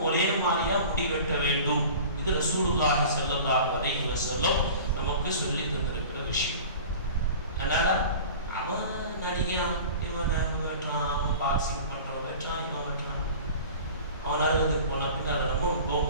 ஒரே மாதிரியா முடி வெட்ட வேண்டும். இது ரசூலுல்லாஹி ஸல்லல்லாஹு அலைஹி வஸல்லம் நமக்கு சொல்லி தந்திருக்கிற விஷயம். அதனால அவன் நடிகன், இவன் வெட்டுறான், அவன் பாக்ஸிங் பண்றவன் வெட்டுறான், இவன் வெட்டுறான், அவன் அறுபதுக்கு போன பின் அதை நம்ம போக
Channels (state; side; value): inverted; both; correlation -0.40